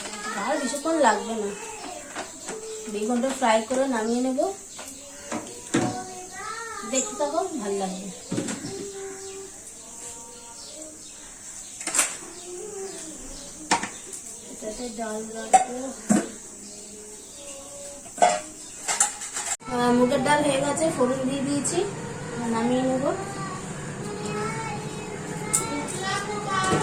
বাহার বেশিক্ষণ লাগবে না, বেগুনটা ফ্রাই করে নামিয়ে নেব। দেখতে থাকো, ভালো লাগবে। এটাতে ডাল রাখবো। মুগের ডাল হয়ে গেছে, ফোড়ন দিয়ে দিয়েছি, নামিয়ে নেব।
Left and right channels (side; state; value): both; identical; correlation 1.00